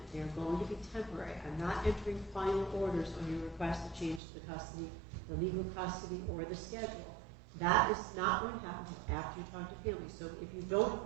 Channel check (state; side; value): drops out; left; at 4.2 s